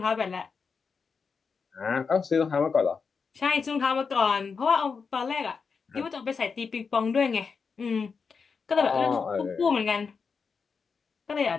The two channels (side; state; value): right; quieter; 5.4 dB